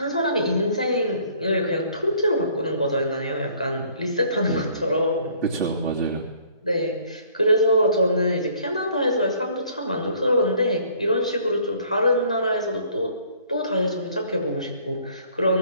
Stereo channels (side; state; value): both; inverted; correlation -0.58